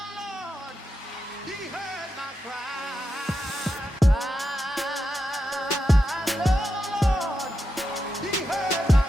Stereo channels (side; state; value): both; normal; correlation 0.87